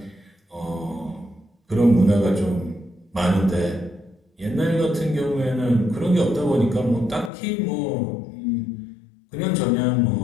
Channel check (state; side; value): drops out; right; at 7.3 s